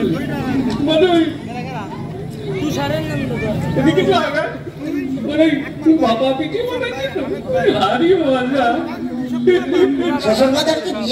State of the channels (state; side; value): identical; both; correlation 1.00